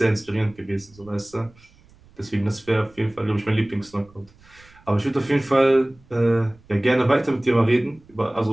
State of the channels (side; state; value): right; noise; rumble, 27 dB below the sound